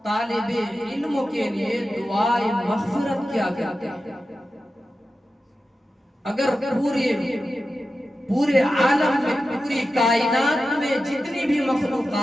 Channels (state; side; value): normal; both; correlation 0.92